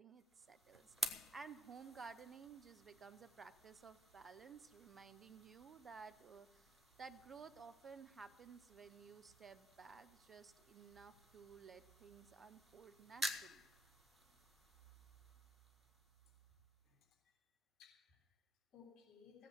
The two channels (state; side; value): normal; both; correlation 0.69